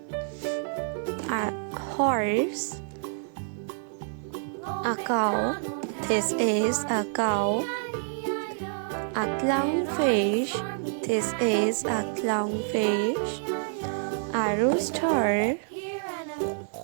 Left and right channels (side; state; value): left; silent; 59 dB below the other